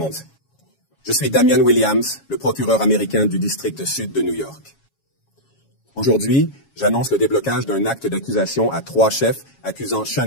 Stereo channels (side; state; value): right; late; 7.3 ms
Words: Je suis Damian Williams, le procureur américain du district sud de New York. Aujourd'hui, j'annonce le déblocage d'un acte d'accusation à 3 chefs accusant